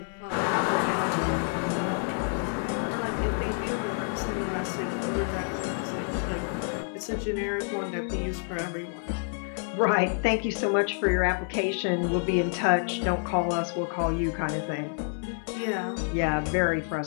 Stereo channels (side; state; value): right; silent; 58 dB below the other